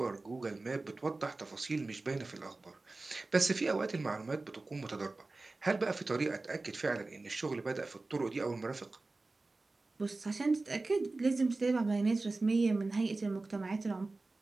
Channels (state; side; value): quieter; left; 3.3 dB